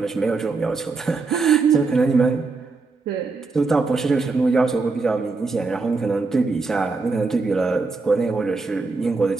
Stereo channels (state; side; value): quieter; left; 4.1 dB